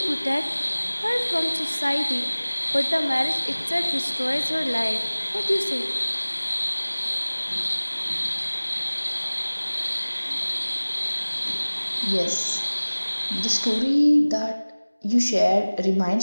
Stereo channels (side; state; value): both; inverted; correlation -1.00